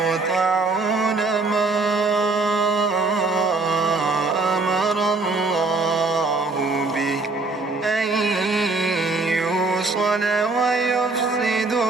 ما أمر الله به أن يوصل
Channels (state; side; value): quieter; left; 3.6 dB